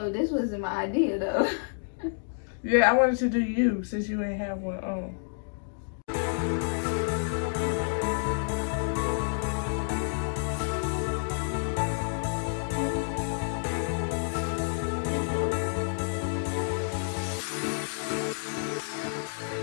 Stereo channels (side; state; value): right; silent; digital silence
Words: this wasn't my idea though. Yeah, I wanted to do you since you ain't have one on.